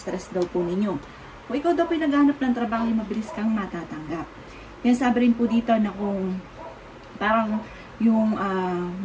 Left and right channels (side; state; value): both; identical; correlation 1.00